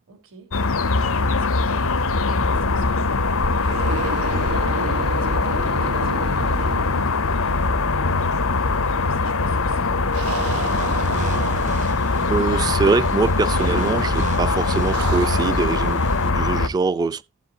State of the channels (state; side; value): normal; both; correlation 0.31